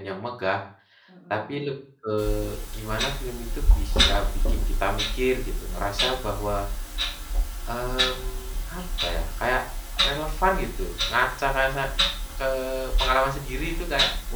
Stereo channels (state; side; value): identical; both; correlation 1.00